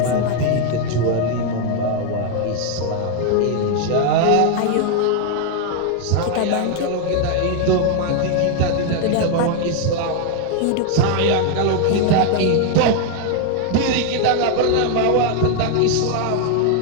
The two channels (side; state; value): both; different; correlation 0.00